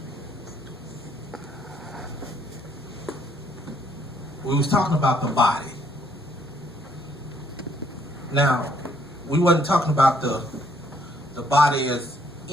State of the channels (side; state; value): both; normal; correlation 0.67